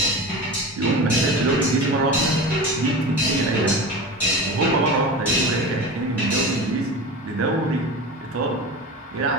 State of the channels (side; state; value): both; normal; correlation 0.29